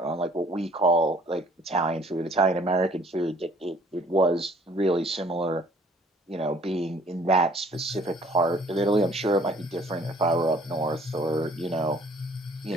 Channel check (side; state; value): both; normal; correlation 0.58